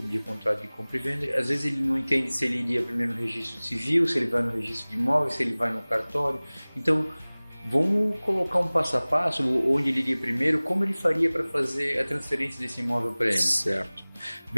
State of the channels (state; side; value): inverted; both; correlation -1.00